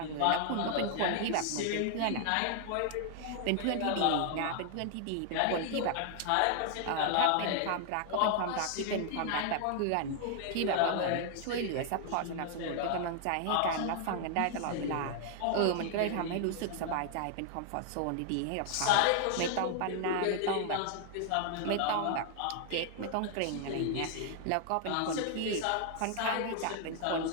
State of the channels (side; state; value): both; different; correlation 0.00